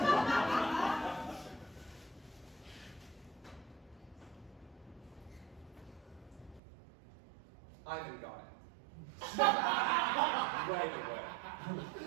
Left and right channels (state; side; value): drops out; left; at 6.6 s